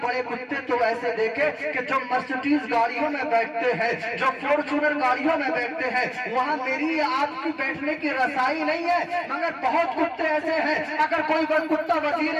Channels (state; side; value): identical; both; correlation 1.00